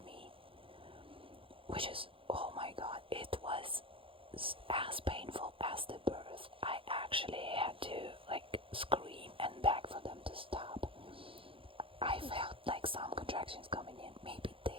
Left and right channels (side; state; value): left; late; 0.26 ms